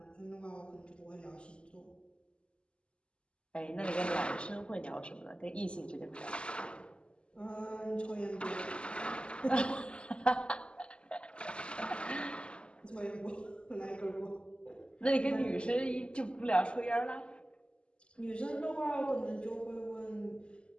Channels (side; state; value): right; late; 0.053 ms